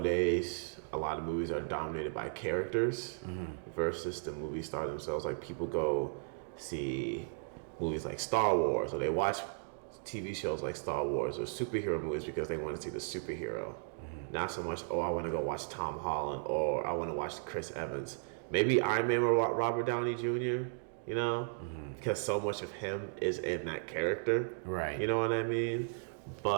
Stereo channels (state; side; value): silent; left; digital silence